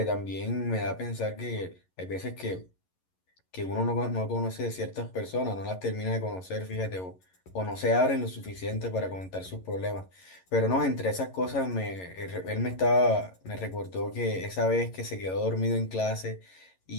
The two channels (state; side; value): late; right; 11 ms